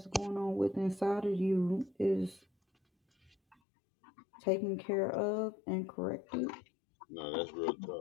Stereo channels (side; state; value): right; drops out; at 3.6 s